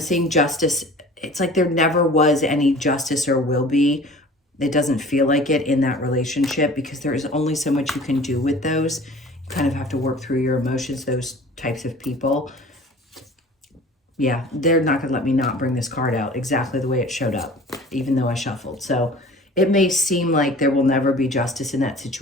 justice. It's like there never was any justice or will be. It doesn't feel like it in that relationship because there is only so much you can do with those. You kind of have to work through your emotions, those types of people. Yeah, they're not going to let me not bring this card out exactly the way it showed up, even though I shuffled. So it may seem like there will never be justice in that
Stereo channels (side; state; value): both; normal; correlation 0.44